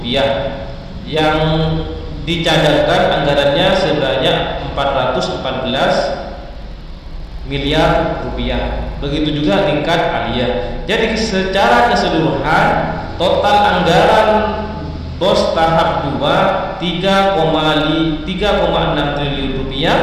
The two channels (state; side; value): identical; both; correlation 1.00